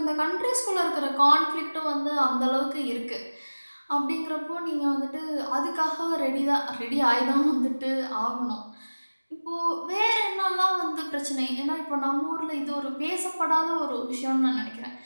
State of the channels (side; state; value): both; inverted; correlation -1.00